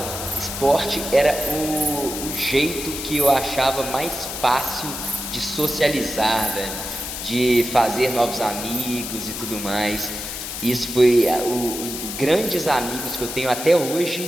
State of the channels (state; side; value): noise; left; hiss, 7 dB below the sound